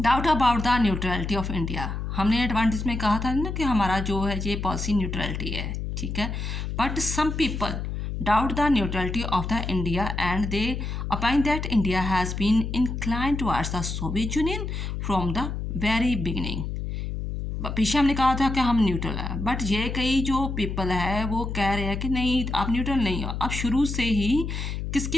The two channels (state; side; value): noise; left; hum, 4 dB below the sound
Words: about the neutrality of India. हमने एडवांटेज में कहा था ना कि हमारा जो है ये पॉलिसी न्यूट्रलिटी है, ठीक है। But some people doubt the neutrality of the India and they opine that India has been inclined towards the Soviet Union from the very beginning। पीछे हमने कहा था कि हम न्यूट्रल है, बट ये कई जो पीपल है वो कह रहे हैं कि नहीं आप न्यूट्रल नहीं हो, आप शुरू से ही